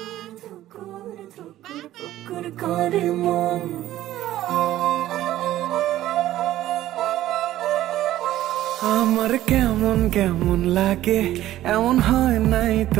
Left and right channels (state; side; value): quieter; left; 13.9 dB